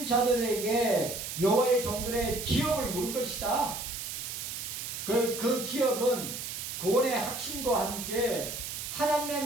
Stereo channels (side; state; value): right; noise; hiss, 6 dB below the sound